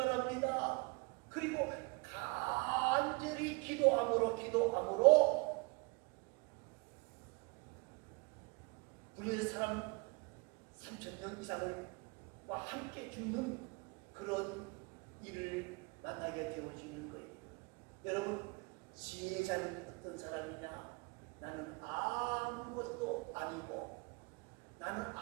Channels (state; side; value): quieter; left; 28.4 dB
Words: 그리고 간절히 기도함으로 우리의 사람 3,000명 이상을 와 함께 죽는 그런 일을 만나게 되어지는 거예요. 여러분, 지혜자는 어떤 사람이냐? 나는 아무것도 아니고